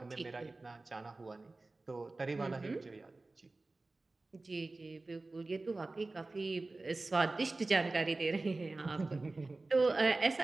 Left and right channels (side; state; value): left; quieter; 3.2 dB